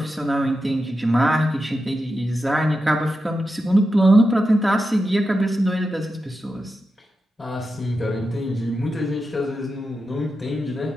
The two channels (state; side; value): normal; both; correlation 0.89